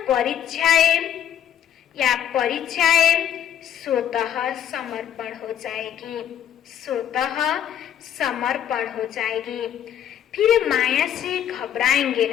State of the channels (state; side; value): quieter; right; 10.1 dB